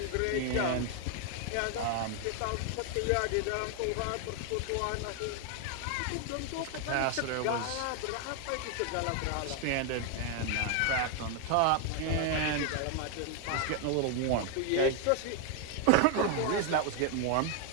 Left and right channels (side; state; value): both; different; correlation 0.01